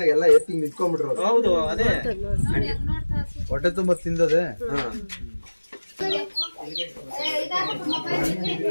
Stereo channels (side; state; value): both; inverted; correlation -1.00